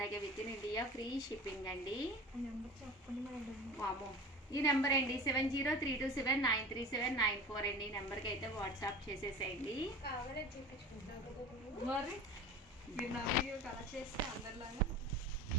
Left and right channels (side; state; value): both; normal; correlation 0.36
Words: within India free shipping అండి. వామో, ఈ నెంబర్ అండి 7032793794 అండి. ఈ నెంబర్కి అయితే వాట్సాప్ చేసేసేయండి. మరి మీరు నా వీడియో కలర్ చేస్తే అందరిలాగా